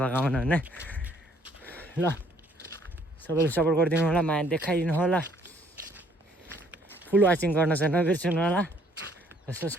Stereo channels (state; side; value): normal; both; correlation 0.63